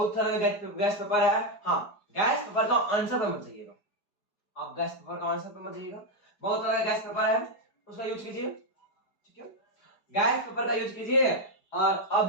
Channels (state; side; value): late; right; 4.8 ms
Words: तरह का गैस पेपर है, हाँ गैस पेपर का आंसर पे मत जाइएगा, आप गैस पेपर का आंसर पे मत जाइएगा, बहुत तरह का गैस पेपर है उसका यूज कीजिए, ठीक है। गैस पेपर का यूज कीजिए और